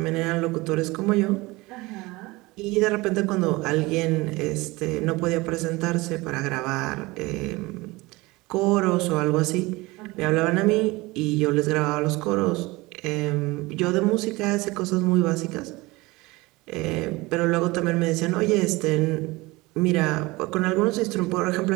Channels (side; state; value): left; quieter; 22.1 dB